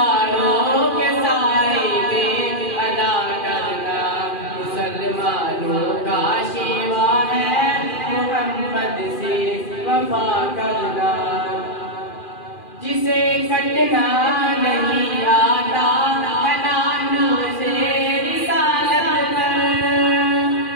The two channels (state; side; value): late; right; 2.4 ms